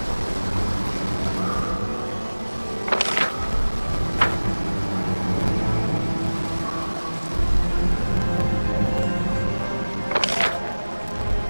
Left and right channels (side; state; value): both; inverted; correlation -1.00